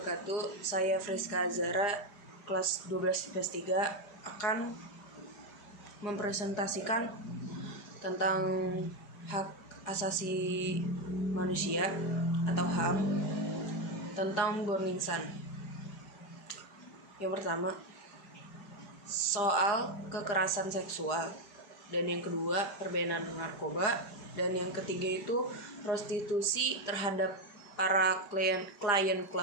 Saya Friska Azara, kelas 12 IPS 3 akan mempresentasikan tentang hak asasi manusia atau HAM tentang Burning Sun. Yang pertama, soal kekerasan seksual, dan yang kedua perbedanan narkoba, dan yang ketiga itu prostitusi terhadap para klien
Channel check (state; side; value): late; right; 4.9 ms